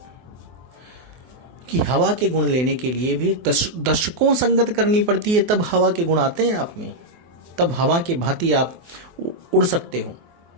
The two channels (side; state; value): left; late; 24 ms